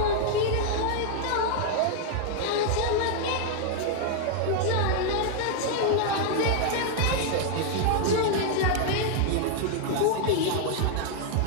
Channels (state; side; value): different; both; correlation 0.00